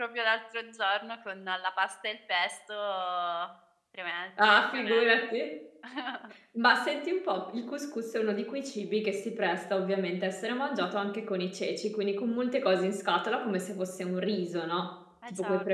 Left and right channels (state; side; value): identical; both; correlation 1.00